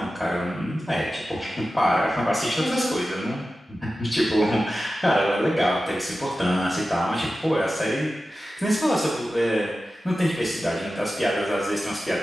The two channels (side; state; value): both; normal; correlation 0.94